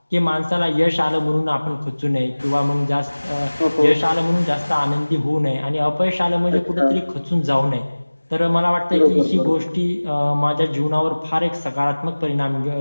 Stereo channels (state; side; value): inverted; both; correlation -1.00